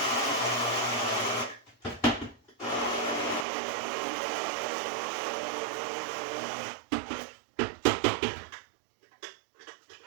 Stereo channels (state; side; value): drops out; left; at 3.5 s